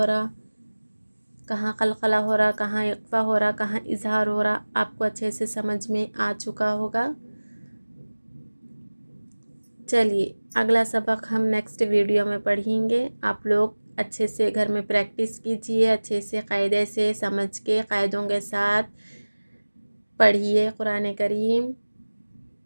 रहा, कहाँ कलकला हो रहा, कहाँ इक़्फ़ा हो रहा, कहाँ इजहार हो रहा, आपको अच्छे से समझ में आ चुका होगा। चलिए अगला सबक हम नेक्स्ट वीडियो में पढ़ेंगे। आप लोग अच्छे से घर में प्रैक्टिस कीजिए, अच्छे से क़ायदे से समझ के क़ायदों के साथ पढ़िए कुरान करीम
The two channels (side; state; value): both; inverted; correlation -1.00